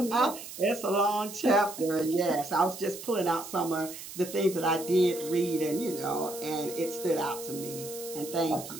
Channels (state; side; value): noise; right; hiss, 12 dB below the sound